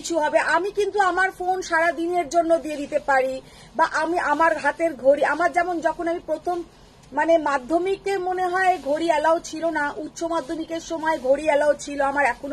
হবে, আমি কিন্তু আমার ফোন সারা দিনের জন্য দিয়ে দিতে পারি, বা আমি আমার হাতের ঘড়ি, আমার যেমন যখন আমি প্রথম মানে মাধ্যমিকে মনে হয় ঘড়ি অ্যালাউ ছিল না, উচ্চ মাধ্যমিকের সময় ঘড়ি অ্যালাউ ছিল, আমার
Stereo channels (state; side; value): identical; both; correlation 1.00